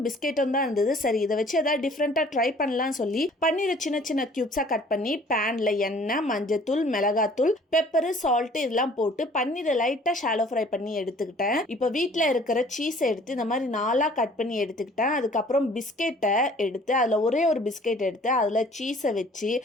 பிஸ்கெட்டும் தான் இருந்தது. சரி இதை வச்சு ஏதாவது டிஃப்ரெண்ட்டாக ட்ரை பண்ணலாம்னு சொல்லி பன்னீரை சின்ன சின்ன க்யூப்ஸாக கட் பண்ணி பேனில் எண்ணெய், மஞ்சத்தூள், மிளகாத்தூள், பெப்பரு, சால்ட்டு இதெல்லாம் போட்டு பன்னீரை லைட்டாக ஷாலோ ஃப்ரை பண்ணி எடுத்துக்கிட்டேன். இப்போ வீட்டில் இருக்கிற சீஸை எடுத்து இந்த மாதிரி நாலாக கட் பண்ணி எடுத்துக்கிட்டேன். அதுக்கப்புறம் பிஸ்கெட்டை எடுத்து அதில் ஒரே ஒரு பிஸ்கெட் எடுத்து அதில் சீஸை வச்சு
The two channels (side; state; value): both; normal; correlation 0.53